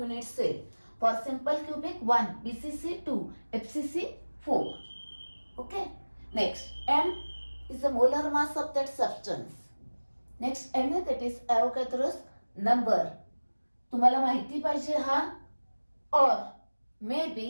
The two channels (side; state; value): both; inverted; correlation -1.00